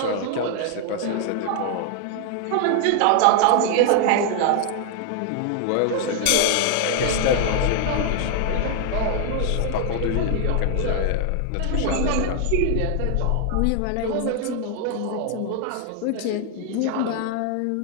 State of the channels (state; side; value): different; both; correlation 0.00